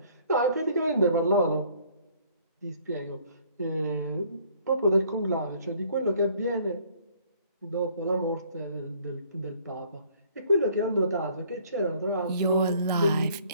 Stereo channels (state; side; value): inverted; both; correlation -0.59